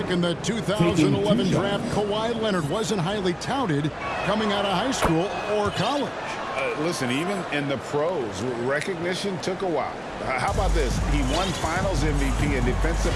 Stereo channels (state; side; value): identical; both; correlation 1.00